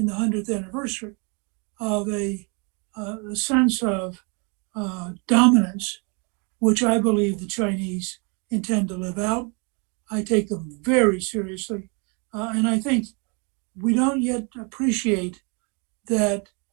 the 100th anniversary, of a sense of dominance, which I believe the Chinese intend to live out. I take them very seriously. And I think we don't yet appreciate that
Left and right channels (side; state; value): left; quieter; 33.5 dB